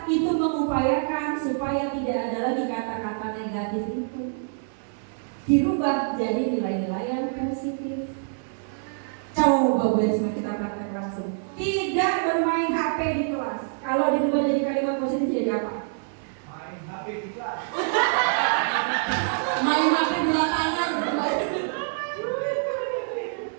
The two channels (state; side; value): silent; left; 61 dB below the other